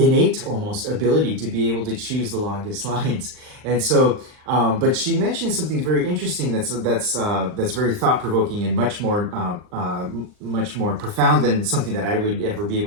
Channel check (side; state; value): left; late; 39 ms